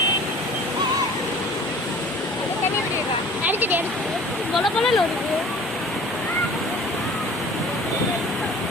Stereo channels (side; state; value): both; normal; correlation 0.46